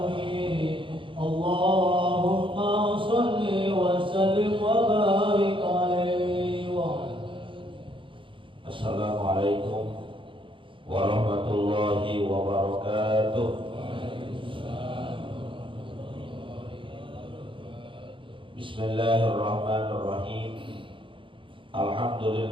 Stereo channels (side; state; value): left; late; 0.25 ms